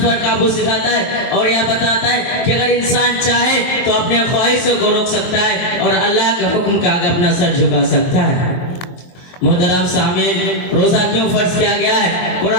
پر قابو سکھاتا ہے اور یہ بتاتا ہے کہ اگر انسان چاہے تو اپنے خواہشوں کو روک سکتا ہے اور اللہ کے حکم کے آگے اپنا سر جھکا سکتا ہے۔ محترم سامعین، روزہ کیوں فرض کیا گیا ہے؟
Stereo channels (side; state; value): right; late; 23 ms